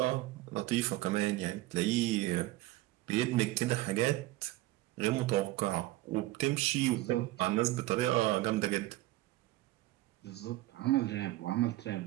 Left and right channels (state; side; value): quieter; left; 17.7 dB